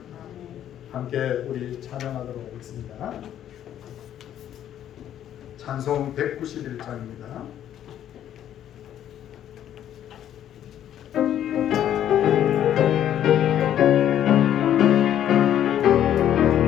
함께 우리 찬양하도록 하겠습니다. 찬송 191장입니다.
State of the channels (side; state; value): right; quieter; 10.8 dB